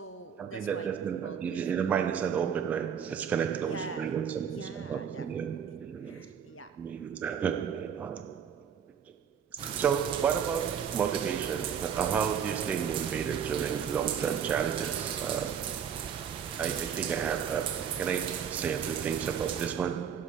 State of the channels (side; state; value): left; quieter; 7.8 dB